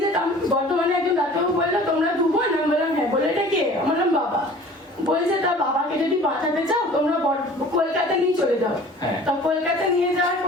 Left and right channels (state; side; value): normal; both; correlation 0.46